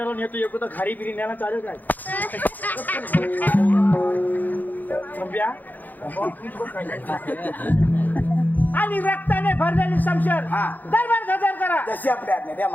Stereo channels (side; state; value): right; late; 0.084 ms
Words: नेतो एक तर खारी बिरी न्यायला चालेल काय? थांबिया आणि रक्ताने भरलेली शमशेर हा. दरबार हजर करा. जशी आपल्या आज्ञा द्या